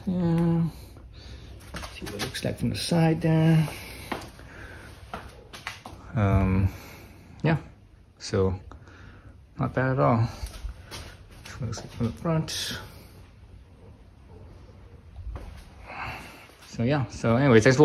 Yeah. See what it looks like from the side there. Yeah, so not bad at all. Looks like from the front. So yeah, so anyway, thanks for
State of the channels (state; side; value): identical; both; correlation 1.00